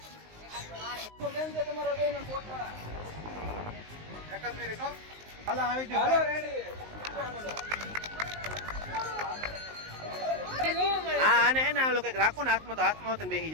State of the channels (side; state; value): left; late; 19 ms